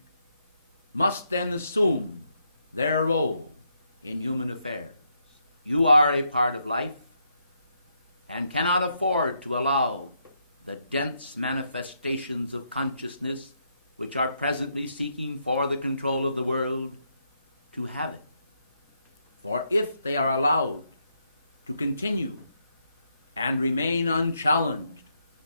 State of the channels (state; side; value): inverted; both; correlation -0.78